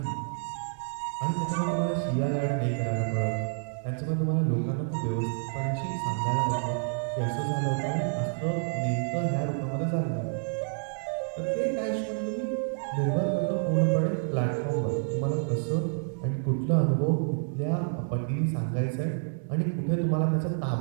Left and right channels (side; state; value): left; silent; digital silence